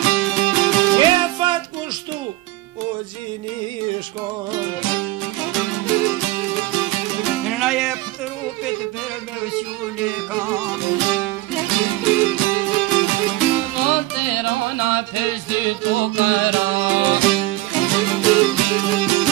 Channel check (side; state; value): left; quieter; 17.5 dB